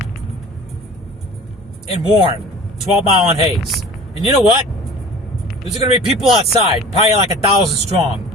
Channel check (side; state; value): both; normal; correlation 0.43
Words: In Warren, 12 Mile and Hayes. And you know what? There's going to be people outside, probably like 1,000